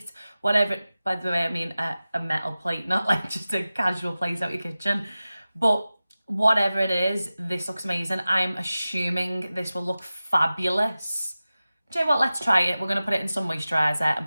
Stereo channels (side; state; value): both; inverted; correlation -0.96